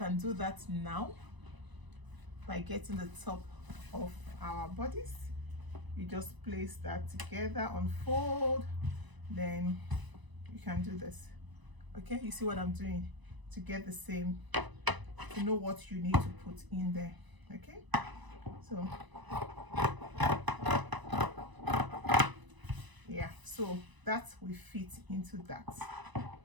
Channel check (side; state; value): left; late; 1.0 ms